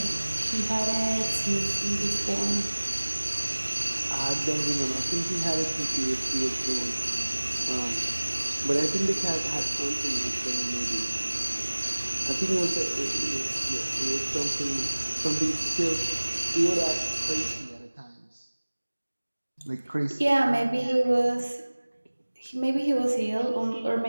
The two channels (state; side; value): inverted; both; correlation -1.00